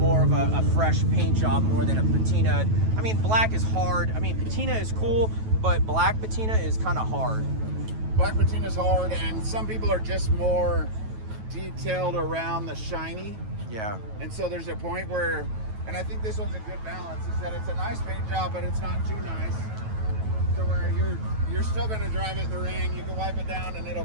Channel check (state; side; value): late; left; 9.2 ms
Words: of a fresh paint job more than a patina. I mean, black is hard. I mean, patina is cool, but black patina is kind of hard. Black patina is hard, and some people are just more detailed around the shiny. Yeah. And so there's a point where, and I think this one's a good balance, is that it's a nice paint job, but it's not too nice. To where you're still going to drive it in the rain. You can wipe it down and it'll